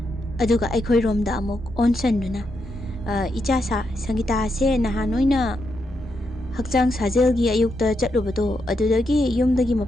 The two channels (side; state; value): both; normal; correlation 0.82